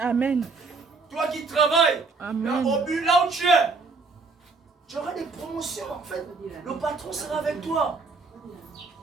Toi qui travailles. Amen. Là où tu es. Tu auras des promotions en fait. Le patron sera avec toi.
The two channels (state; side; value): quieter; left; 4.1 dB